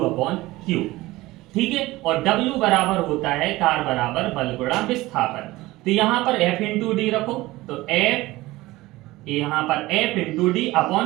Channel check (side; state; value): left; quieter; 18.9 dB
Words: ठीक है, और W बराबर होता है कार्य बराबर बल गुणा विस्थापन। तो यहां पर F इंटू डी रखो, तो F यहां पर F into D